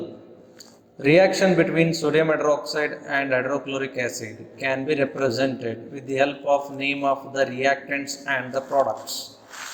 reaction between sodium hydroxide and hydrochloric acid can be represented with the help of name of the reactants and the products.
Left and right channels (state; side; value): identical; both; correlation 1.00